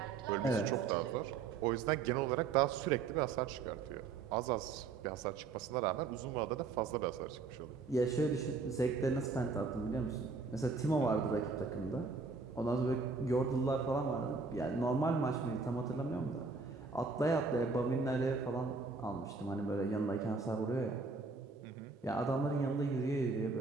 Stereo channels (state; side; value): quieter; left; 4.5 dB